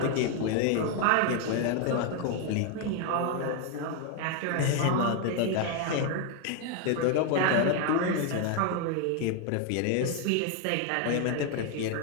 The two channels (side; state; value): both; different; correlation 0.01